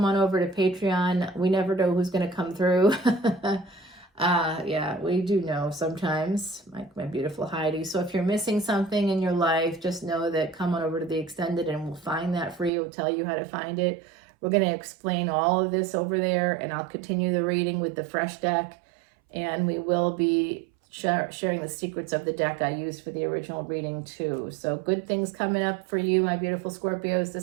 on over to Patreon. We never know who's going to come through. Yeah, we do know sometimes, like my beautiful Heidi. So if you're missing something in your life, just know that come on over to the extended and we'll find that for you. We'll tell you how to find it. We're going to explain all of this over there, and I'll continue the reading with the fresh deck, and we will be sharing the secrets of the deck I used for the original reading too. So good things coming up for you, my beautiful Scorpios.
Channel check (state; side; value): drops out; left; at 12.7 s